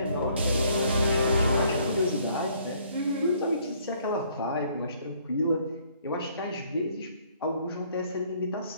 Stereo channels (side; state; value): both; inverted; correlation -0.63